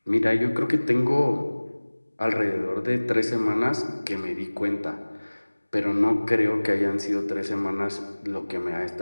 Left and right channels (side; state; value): both; inverted; correlation -1.00